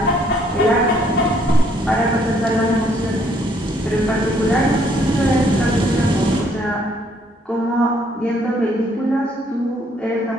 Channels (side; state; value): both; normal; correlation 0.66